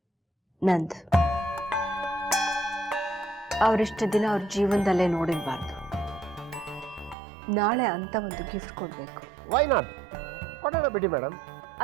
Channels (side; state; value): left; drops out; at 7.2 s